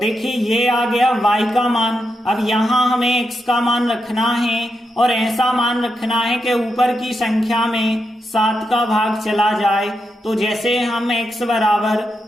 ये आ गया y का मान। अब यहां हमें x का मान रखना है और ऐसा मान रखना है कि ऊपर की संख्या में 7 का भाग चला जाए। तो जैसे हम x बराबर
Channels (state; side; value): normal; both; correlation 0.85